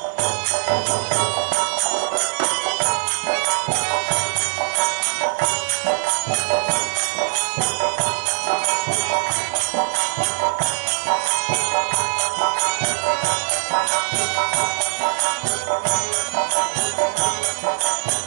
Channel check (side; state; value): left; silent; 65 dB below the other